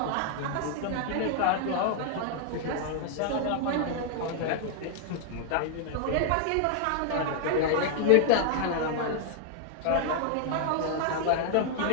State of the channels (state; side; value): different; both; correlation 0.00